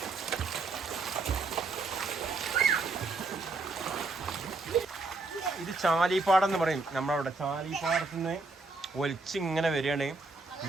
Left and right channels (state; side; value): quieter; left; 3.6 dB